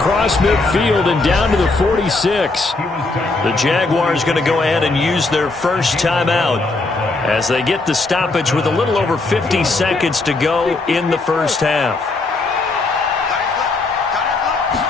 midfield and down to the 46. The Jaguars going to go ahead and use their first timeout as they get the stoppage with a little over 50 seconds to go in the first half.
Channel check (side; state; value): right; quieter; 3.4 dB